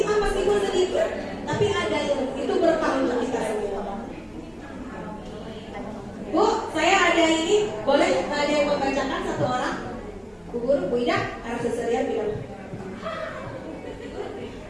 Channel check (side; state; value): both; identical; correlation 1.00